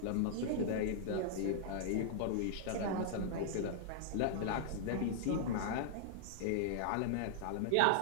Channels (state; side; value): different; both; correlation -0.01